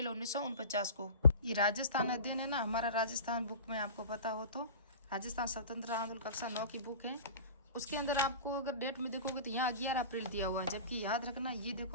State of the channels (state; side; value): inverted; both; correlation -0.37